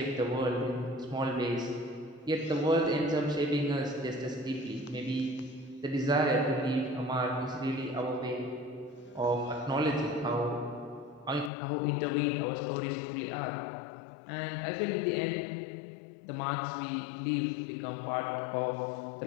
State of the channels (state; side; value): drops out; right; at 11.5 s